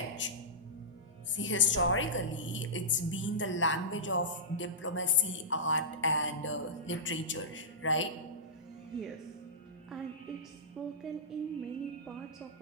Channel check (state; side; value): normal; both; correlation -0.15